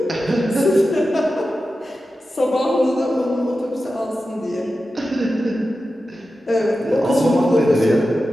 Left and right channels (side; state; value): both; normal; correlation 0.92